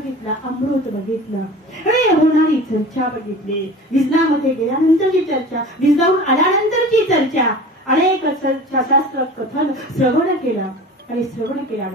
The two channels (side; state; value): both; normal; correlation 0.39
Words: अमृत बघितलं आणि होणारी चर्चा बघितली. विजनामध्ये गेल्यानंतरची चर्चा, विजनावरून आल्यानंतरची चर्चा, अनेक शास्त्र कथन श्रवण केलं. आणि श्रवण